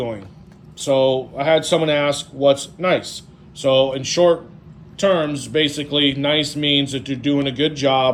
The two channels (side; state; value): both; identical; correlation 1.00